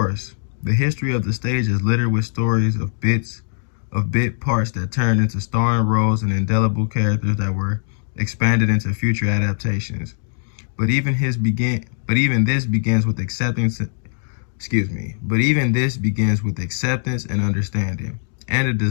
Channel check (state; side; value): silent; right; digital silence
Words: The history of the stage is littered with stories of bit parts that turned into starring roles and indelible characters that were expanded into future adaptations. But even this begins with acceptance and understanding, and a